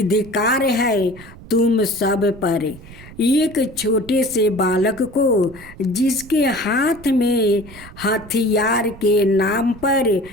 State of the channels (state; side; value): noise; right; rumble, 18 dB below the sound